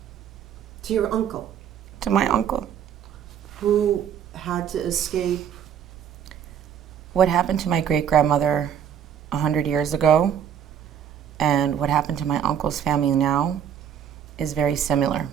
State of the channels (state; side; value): quieter; left; 8.7 dB